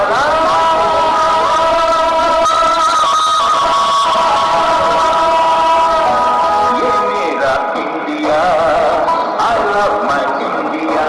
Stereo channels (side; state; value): both; identical; correlation 1.00